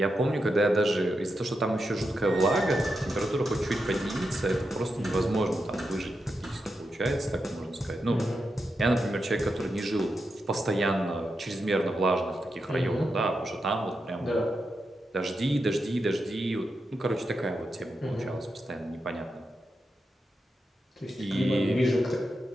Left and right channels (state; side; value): normal; both; correlation 0.87